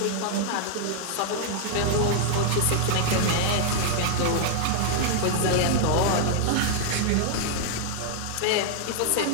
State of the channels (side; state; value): both; different; correlation 0.00